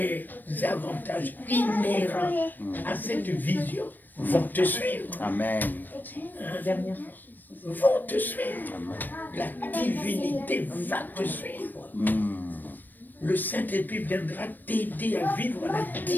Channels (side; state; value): right; late; 0.090 ms